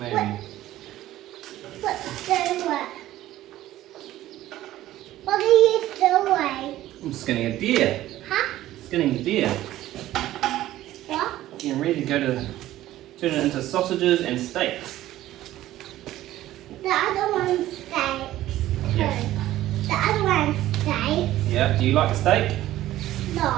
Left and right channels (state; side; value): quieter; left; 14.5 dB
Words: Let's do it. What are you doing? I'm skinning a deer. Huh? Skinning a deer. What? Getting ready to go to turn it into sausages and steaks. The other one's steaks. Yeah. The other one's steaks. Yeah. Do you like a steak?